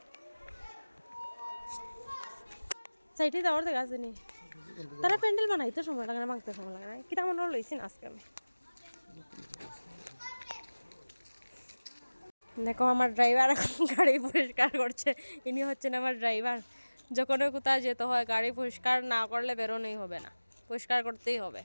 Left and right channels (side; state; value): both; inverted; correlation -1.00